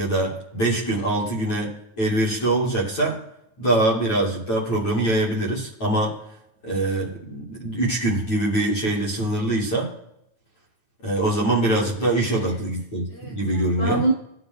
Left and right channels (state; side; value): late; right; 9.0 ms